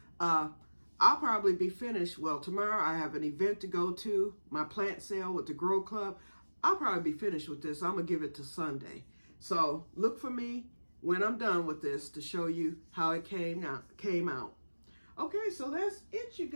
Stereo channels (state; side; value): inverted; both; correlation -1.00